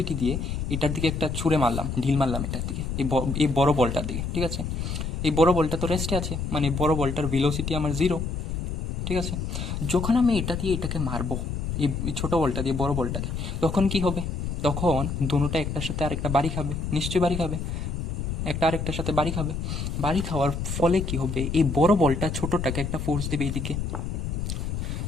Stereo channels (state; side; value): noise; left; rumble, 3 dB below the sound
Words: দিয়ে এটার দিকে একটা ছুঁড়ে মারলাম, ঢিল মারলাম এটার দিকে, এই বড় বলটার দিকে, ঠিক আছে। এই বড় বলটা তো রেস্টে আছে, মানে বড় বলটার ভেলোসিটি আমার 0, ঠিক আছে। যখন আমি এটা দিয়ে এটাকে মারবো, এই ছোট বলটা দিয়ে বড় বলটাকে, তখন কি হবে? তখন দুটোটা একটার সাথে আরেকটা বাড়ি খাবে, নিশ্চয়ই বাড়ি খাবে, একটা আরেকটার সাথে বাড়ি খাবে। বাড়ি খাওয়ার ফলে কি হবে? এই বড় বলটা ছোটটাকে একটা ফোর্স দেবে এইদিকে।